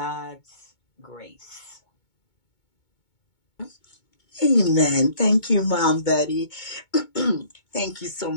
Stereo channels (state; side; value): late; right; 2.2 ms